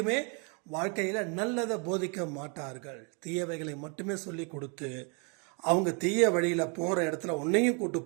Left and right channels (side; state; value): left; quieter; 34.9 dB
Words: வாழ்க்கையில நல்லதை போதிக்க மாட்டார்கள். தீயவைகளை மட்டுமே சொல்லி கொடுத்து அவங்க தீய வழியில போற இடத்துல உன்னையும் கூட்டு